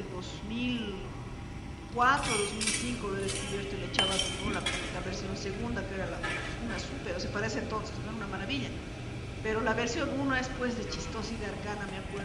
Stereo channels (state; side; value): identical; both; correlation 1.00